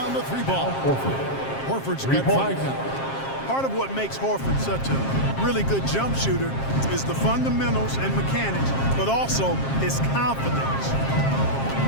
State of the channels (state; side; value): late; right; 7.5 ms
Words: the three ball. Horford's got 5 now. Part of what makes Horford such a really good jump shooter is the fundamentals and mechanics, but also his confidence.